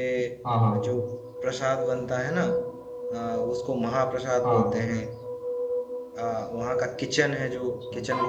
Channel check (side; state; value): both; identical; correlation 1.00